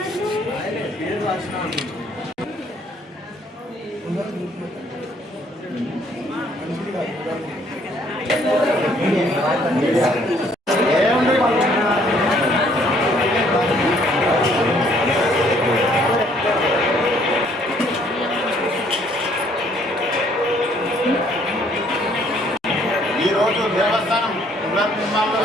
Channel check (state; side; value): normal; both; correlation 0.64